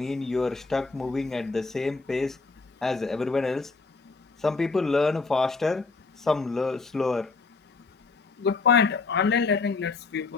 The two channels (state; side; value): quieter; right; 4.1 dB